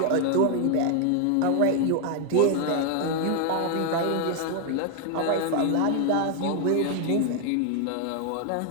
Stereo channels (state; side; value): different; both; correlation 0.01